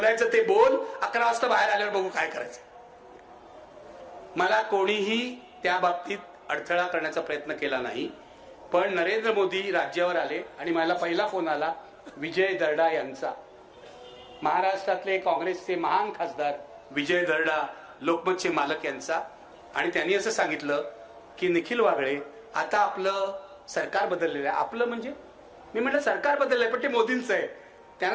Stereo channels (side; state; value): both; identical; correlation 1.00